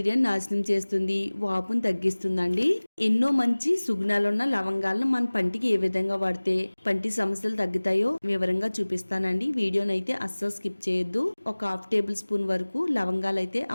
నాశనం చేస్తుంది, వాపును తగ్గిస్తుందండి. ఎన్నో మంచి సుగుణాలున్న లవంగాలను మన పంటికి ఏ విధంగా వాడితే పంటి సమస్యలు తగ్గుతాయో వివరంగా చూపిస్తానండి. వీడియోనైతే అస్సలు స్కిప్ చేయొద్దు. ఒక హాఫ్ టేబుల్ స్పూన్ వరకు లవంగాలు అయితే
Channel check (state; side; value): inverted; both; correlation -1.00